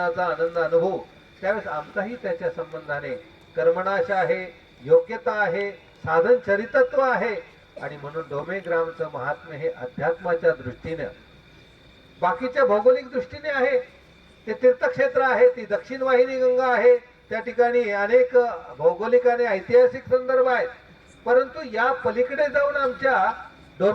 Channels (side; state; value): both; identical; correlation 1.00